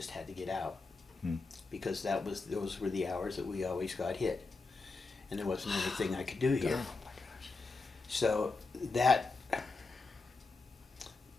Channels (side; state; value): right; quieter; 3.8 dB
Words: had to get out Hmm. because those were the hours that we always got hit, and there wasn't anything I could do here. So that